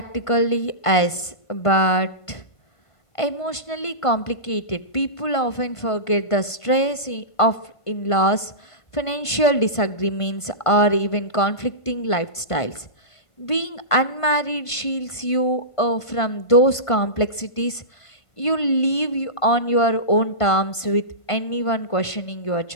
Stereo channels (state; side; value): late; right; 1.5 ms